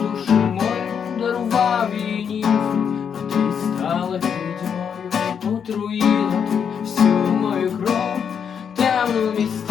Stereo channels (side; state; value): right; quieter; 7.4 dB